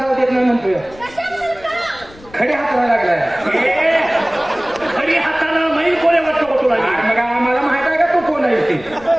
देत नाही म्हणतोय खडी हाताला लागलाय खडी हाताला माहीत कोणी वाटतं तुला मग आम्हाला माहित आहे का तू कोण आहे ते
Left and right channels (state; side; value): noise; left; rumble, 22 dB below the sound